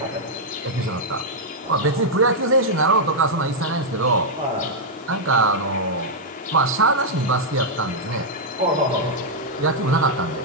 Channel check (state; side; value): normal; both; correlation -0.05